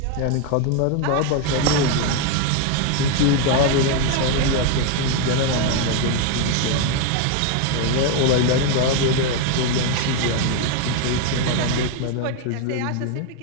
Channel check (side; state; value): both; different; correlation 0.01